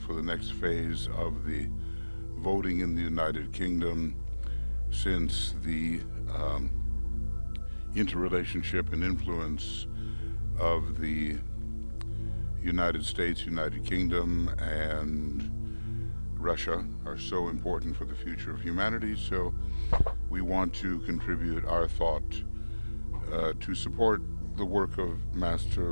the next phase of the voting in the United Kingdom, since the interrelationship and influence of the United States, United Kingdom, and Russia are so important for the future of humanity. So we want to contribute our thought to support the work of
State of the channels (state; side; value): inverted; both; correlation -1.00